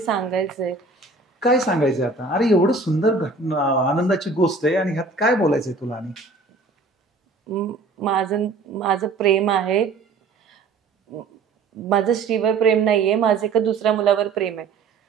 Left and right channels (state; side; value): quieter; left; 4.0 dB